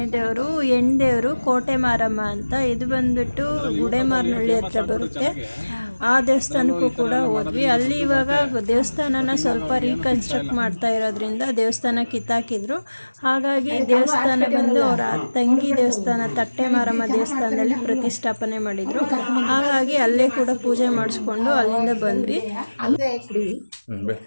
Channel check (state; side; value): inverted; both; correlation -1.00